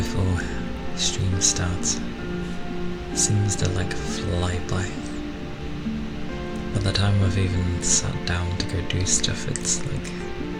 stream starts seems to like fly by. By the time I've even sat down to go do stuff, it's like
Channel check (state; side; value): identical; both; correlation 1.00